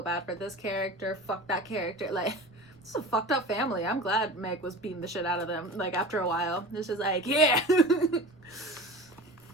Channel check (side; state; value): right; noise; rumble, 29 dB below the sound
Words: bad for this character. Fuck that character. Like, this is a fucked up family. I'm glad Meg was beating the shit out of them. Like, after a while. It's just like, yeah.